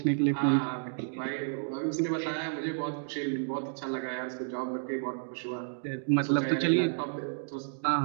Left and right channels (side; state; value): left; silent; digital silence